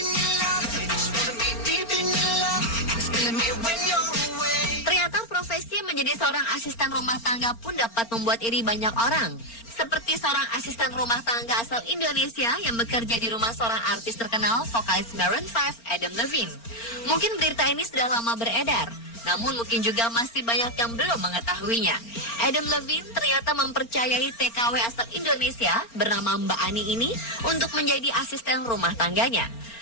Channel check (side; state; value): right; late; 4.4 ms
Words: Profesi menjadi seorang asisten rumah tangga pun dapat membuat iri banyak orang. Seperti seorang asisten rumah tangga asal Indonesia yang bekerja di rumah seorang artis terkenal, vokalis Maroon 5, Adam Levine. Mungkin berita ini sudah lama beredar, namun mungkin juga masih banyak yang belum mengetahuinya. Adam Levine ternyata mempercayai TKW asal Indonesia bernama Mbak Ani ini untuk menjadi asisten rumah tangganya.